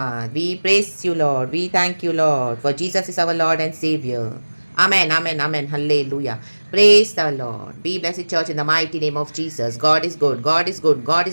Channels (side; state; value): both; inverted; correlation -1.00